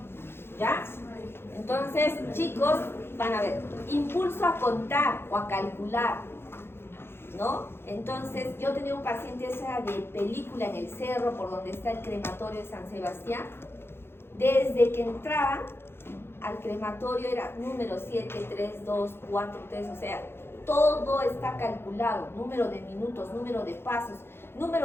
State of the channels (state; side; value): late; right; 0.11 ms